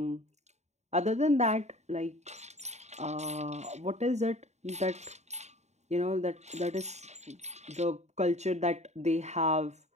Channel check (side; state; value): left; late; 0.33 ms